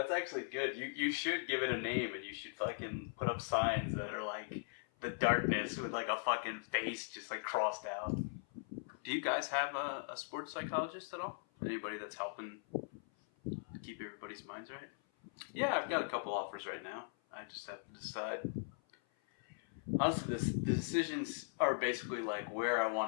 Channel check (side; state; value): right; silent; 51 dB below the other